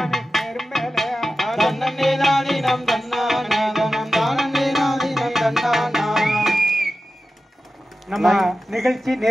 தேர் மேலே தன்னே தானினம் தன்னானே தினம் தானே நாதினம் தன்னானா நம்ம நிகழ்ச்சி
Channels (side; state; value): both; normal; correlation 0.93